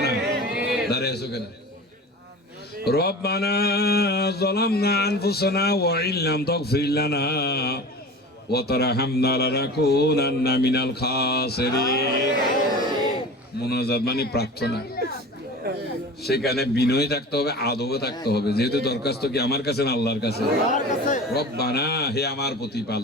না, দাঁড়িয়ে আছো কেন? রব্বানা যালামনা আনফুসানা ওয়া ইল্লাম তাগফির লানা ওয়া তারহামনা লানাকুনান্না মিনাল খাসিরিন। মুনাজাত মানে প্রার্থনা, সেখানে বিনয় থাকতে হবে, আদবে থাকতে হবে। যেহেতু দরখাস্ত কি আমার কাছে না আল্লাহর কাছে। রব্বানা, হে আমার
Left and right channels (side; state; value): both; normal; correlation 0.35